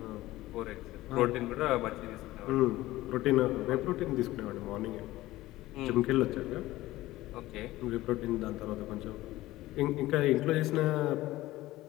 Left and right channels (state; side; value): quieter; right; 17.1 dB